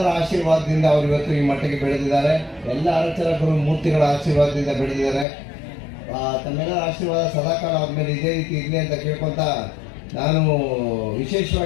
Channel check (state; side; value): drops out; right; at 5.2 s